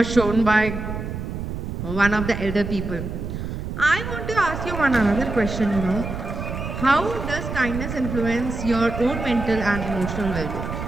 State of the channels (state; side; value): noise; right; rumble, 6 dB below the sound